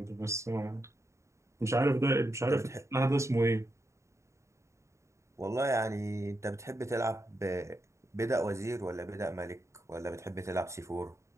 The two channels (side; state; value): left; late; 0.14 ms